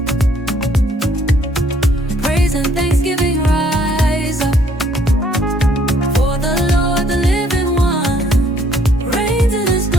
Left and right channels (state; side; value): normal; both; correlation 0.64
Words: Praise and thanksgiving rise up. For the Lord, the living one, reigns in his